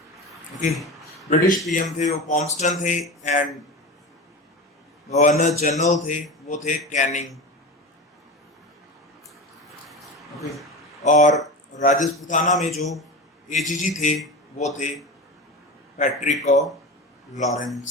ओके, ब्रिटिश पीएम थे वो पॉम्स्टन थे, एंड गवर्नर जनरल थे वो थे कैनिंग। ओके, और राजपूताना में जो एजीजी थे वो थे Patrick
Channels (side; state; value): both; normal; correlation 0.27